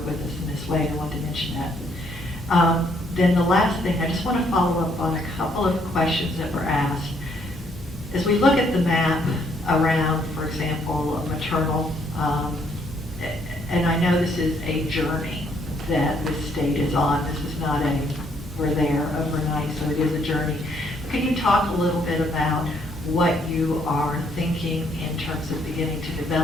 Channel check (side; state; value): both; normal; correlation 0.69